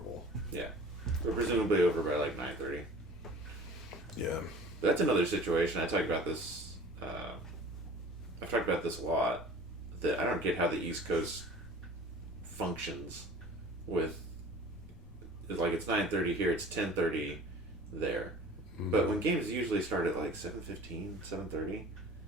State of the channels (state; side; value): normal; both; correlation 0.44